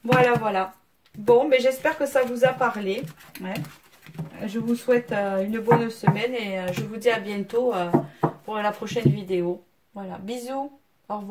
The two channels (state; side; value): identical; both; correlation 1.00